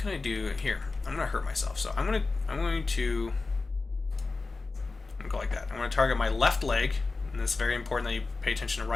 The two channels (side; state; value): right; quieter; 3.8 dB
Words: I do here? I'm gonna hurt myself, so I'm going to go like that. I'm gonna target my left leg, and it's very important that you pay attention to